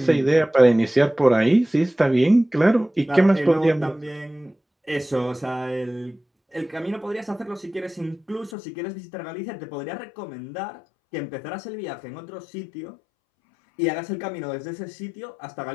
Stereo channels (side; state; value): right; drops out; at 8.6 s